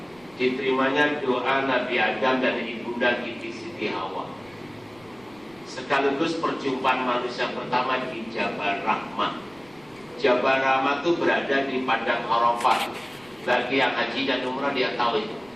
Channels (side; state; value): right; noise; rumble, 28 dB below the sound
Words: diterimanya doa Nabi Adam dan ibunda Siti Hawa, sekaligus perjumpaan manusia pertama di Jabal Rahmah. Jabal Rahmah itu berada di padang Arafah. Bagi yang haji dan umrah dia tahu itu.